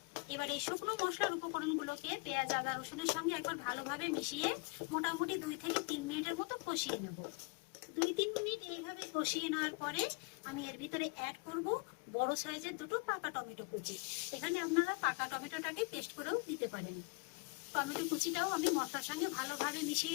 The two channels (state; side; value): quieter; right; 31.4 dB